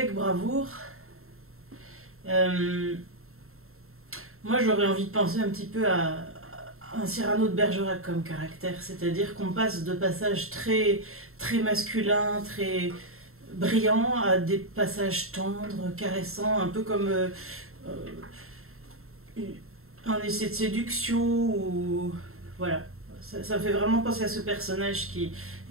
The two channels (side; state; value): left; late; 0.62 ms